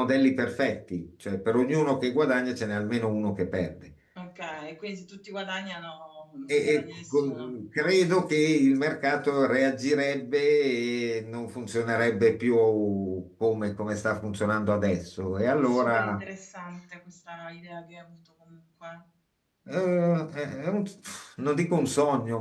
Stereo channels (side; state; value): both; identical; correlation 1.00